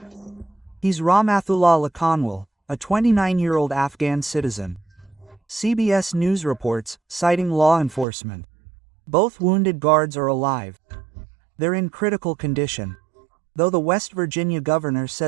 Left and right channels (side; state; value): left; drops out; at 8.1 s